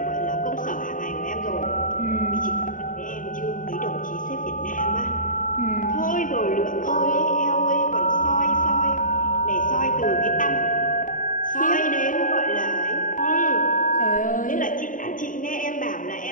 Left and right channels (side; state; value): right; late; 0.38 ms